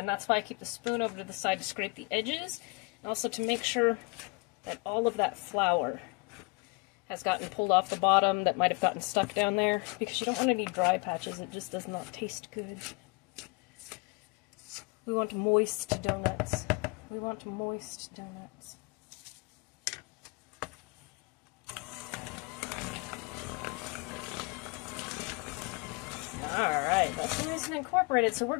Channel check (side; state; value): right; quieter; 29.6 dB